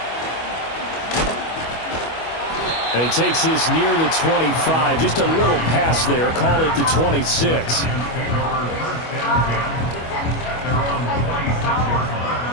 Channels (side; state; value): right; late; 25 ms